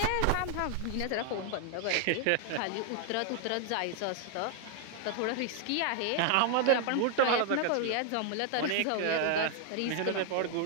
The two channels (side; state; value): both; different; correlation 0.00